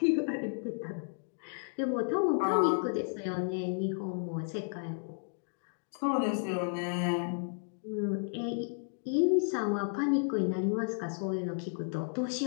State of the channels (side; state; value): right; silent; digital silence